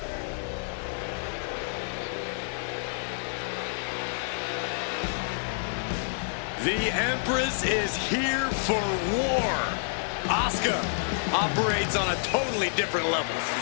The Empress is here for war. Asuka operates on a totally different level.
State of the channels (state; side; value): silent; right; 59 dB below the other